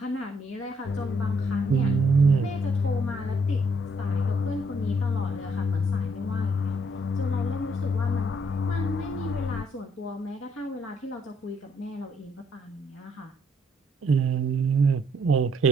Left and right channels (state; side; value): normal; both; correlation 0.70